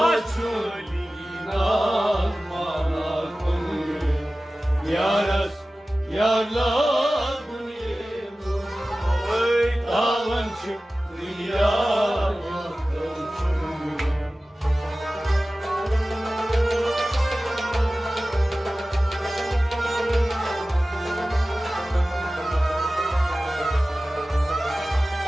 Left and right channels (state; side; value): normal; both; correlation 0.96